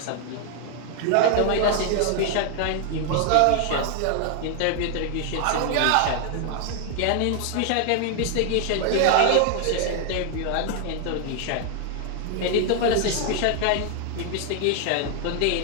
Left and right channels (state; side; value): different; both; correlation 0.00